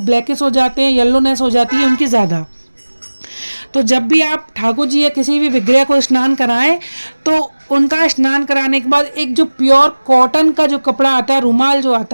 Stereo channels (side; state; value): both; inverted; correlation -1.00